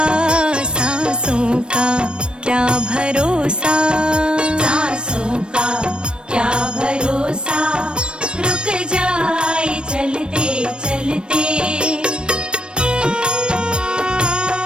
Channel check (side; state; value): left; late; 0.054 ms